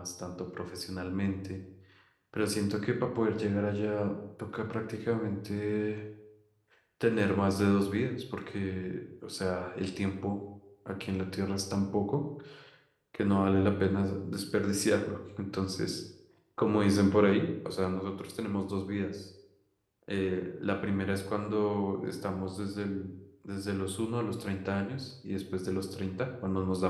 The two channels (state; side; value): identical; both; correlation 1.00